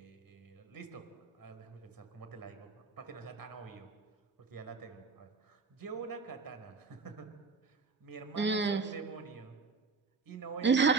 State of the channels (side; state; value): left; quieter; 4.6 dB